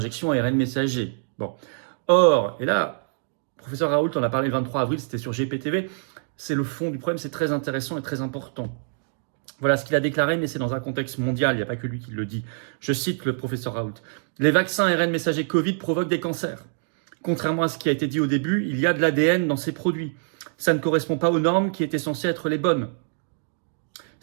ARN messager. Bon. Or, et là, professeur Raoult en a parlé le 23 avril, c'était sur GPTV, c'est le fond du problème, c'est très intéressant et très important. Voilà ce qu'il a déclaré, mais c'est dans un contexte mondial, il n'y a pas que lui qui le dit. Je cite le professeur Raoult. Les vaccins ARN messager Covid provoquent des cancers. Contrairement à ce qui a été dit au début, il y a de l'ADN dans ces produits. Ça ne correspond pas aux normes qui étaient censées être les bonnes.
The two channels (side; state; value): left; silent; digital silence